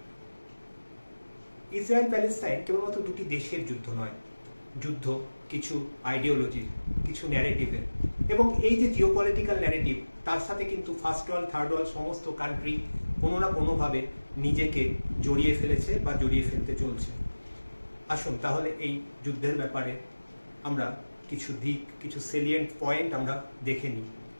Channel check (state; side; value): inverted; both; correlation -1.00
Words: ইসরায়েল প্যালেস্তাইন কেবলমাত্র দুটি দেশের যুদ্ধ নয়, যুদ্ধ কিছু আইডিওলজির, কিছু ন্যারেটিভের, এবং এই যে জিওপলিটিক্যাল ন্যারেটিভ, তার সাথে কিন্তু ফার্স্ট ওয়ার্ল্ড, থার্ড ওয়ার্ল্ড সমস্ত কান্ট্রি কোনো না কোনোভাবে নিজেকে জড়িয়ে ফেলেছে বা জড়িয়ে ফেলতে চলছে। আসুন তাহলে এই যুদ্ধের ব্যাপারে আমরা কিছু দিক, কিছু সেলিয়েন্ট পয়েন্ট আমরা দেখে নিই।